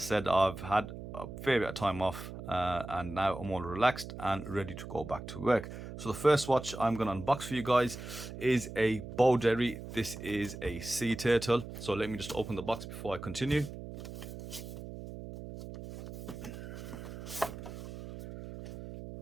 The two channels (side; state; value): right; noise; hum, 10 dB below the sound